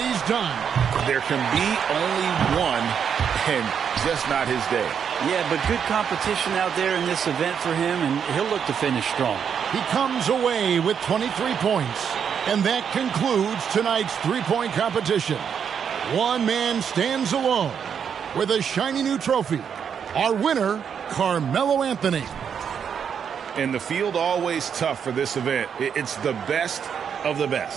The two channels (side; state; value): left; quieter; 7.5 dB